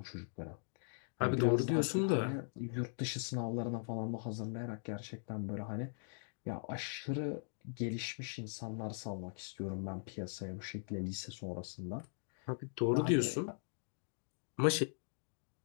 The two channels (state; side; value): silent; right; digital silence